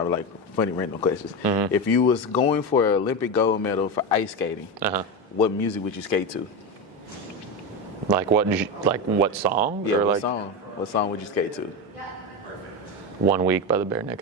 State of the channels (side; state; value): both; normal; correlation 0.17